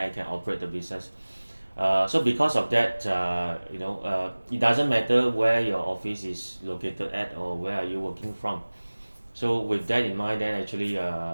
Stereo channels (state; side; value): inverted; both; correlation -1.00